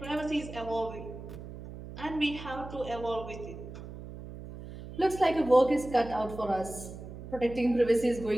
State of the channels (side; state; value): right; noise; hum, 12 dB below the sound